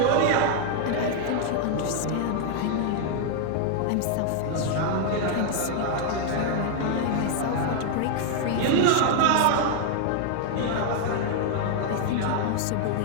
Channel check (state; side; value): different; both; correlation 0.00